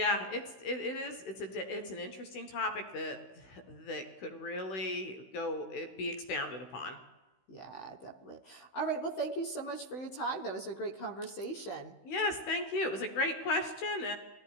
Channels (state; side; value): late; right; 16 ms